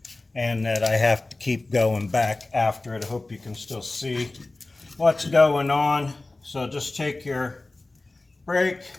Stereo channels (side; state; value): right; quieter; 3.1 dB